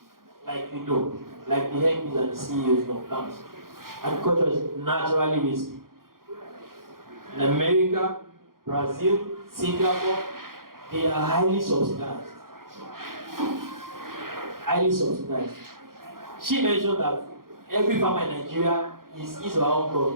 like we know, like the MPs and the CEOs of farms, agriculture is naturally risky. In America, Brazil, Singapore, they are highly subsidized. Highly subsidized. She mentioned that every farmer in Nigeria is his or her own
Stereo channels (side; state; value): left; late; 0.92 ms